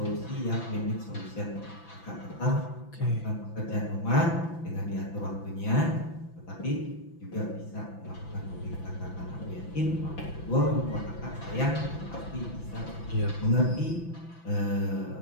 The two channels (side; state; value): right; late; 5.9 ms